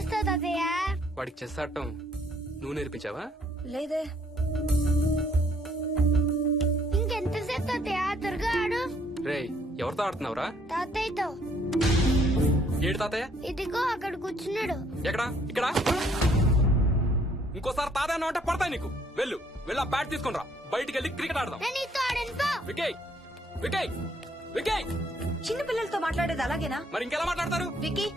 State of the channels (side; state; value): both; normal; correlation 0.65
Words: తాతయ్య? వాడికి చెస్ ఆడటం నువ్వు నేర్పించావా? లేదే. ఇంకెంతసేపు తాతయ్య? త్వరగా ఆడు. రేయ్, ఎవరితో ఆడుతున్నావురా? తాతయ్యతో. ఏడు తాతయ్య? ఇదిగో అక్కడ కూర్చున్నాడు. ఎక్కడా? ఇక్కడ. ఇంకోసారి తాతయ్య అంటే పడతాయి నీకు. వెళ్ళు వెళ్ళి ఆ బ్యాట్ తీసుకుని రా, బయటికి వెళ్ళి క్రికెట్ ఆడదాం. నేను నీతో ఆడను పో. వికయ్ వికయ్ వికయ్. చిన్న పిల్లలతో మాట్లాడేది అలాగేనా? మరి ఇంకెలా మాట్లాడతారు? Wiki,